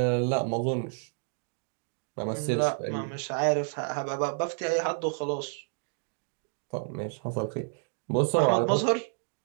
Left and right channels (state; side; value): silent; left; 58 dB below the other